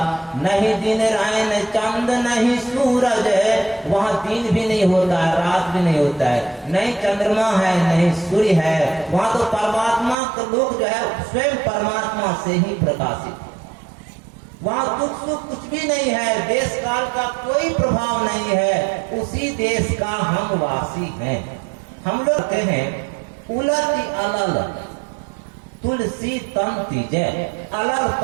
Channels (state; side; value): drops out; left; at 10.2 s